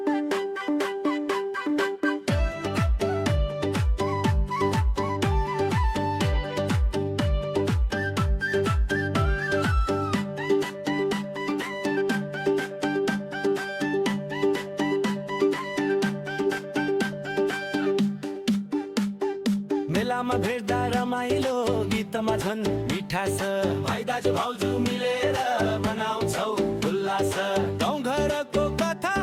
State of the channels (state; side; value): identical; both; correlation 1.00